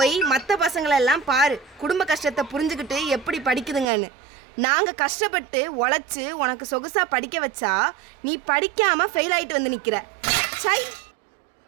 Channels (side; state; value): left; drops out; at 3.9 s